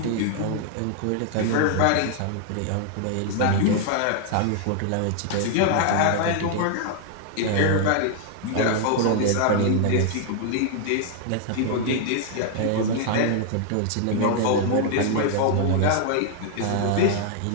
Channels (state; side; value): different; both; correlation 0.00